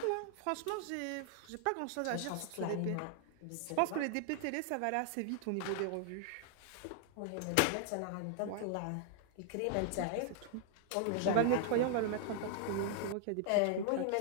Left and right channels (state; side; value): different; both; correlation 0.00